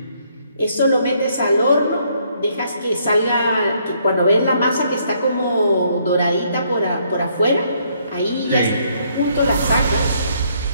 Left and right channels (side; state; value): both; inverted; correlation -0.69